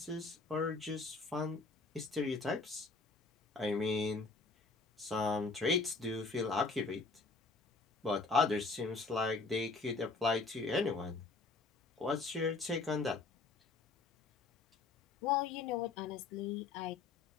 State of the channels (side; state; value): right; quieter; 3.9 dB